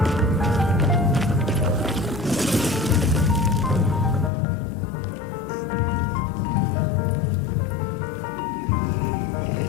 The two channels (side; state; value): right; drops out; at 4.3 s